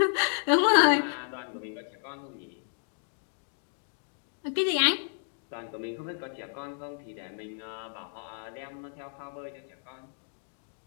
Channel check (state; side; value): silent; right; digital silence